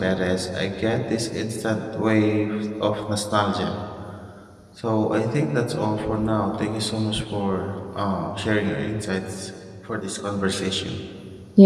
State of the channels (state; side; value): identical; both; correlation 1.00